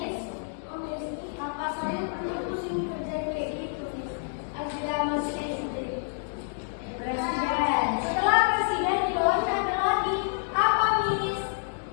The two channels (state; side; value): silent; right; digital silence